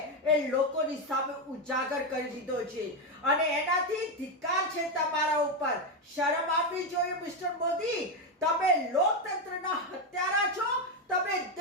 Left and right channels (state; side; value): normal; both; correlation 0.08